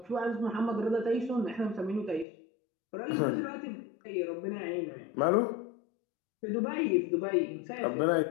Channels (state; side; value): drops out; right; at 2.2 s